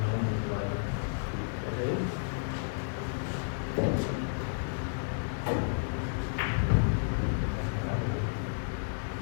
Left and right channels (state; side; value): silent; right; digital silence